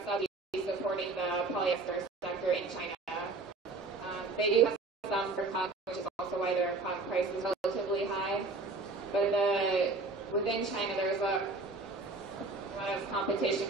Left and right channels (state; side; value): quieter; left; 3.6 dB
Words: subsidies supporting the polyester sector in China. They do have some for cotton, which is also why their cotton price is relatively high. But within China, there's a lot of competition